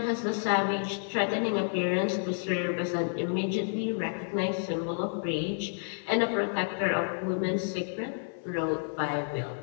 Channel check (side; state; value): right; silent; 58 dB below the other